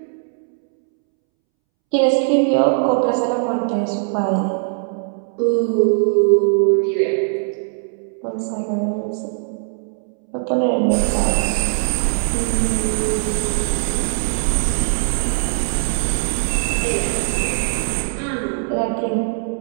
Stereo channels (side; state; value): left; silent; 66 dB below the other